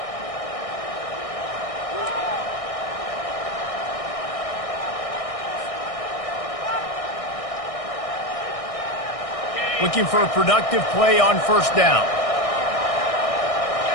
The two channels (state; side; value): late; right; 1.6 ms